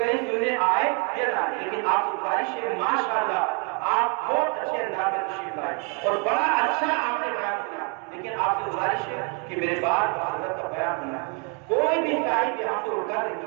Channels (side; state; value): left; quieter; 34.1 dB